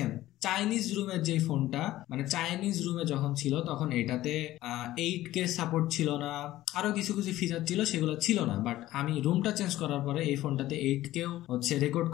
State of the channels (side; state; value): right; quieter; 15.3 dB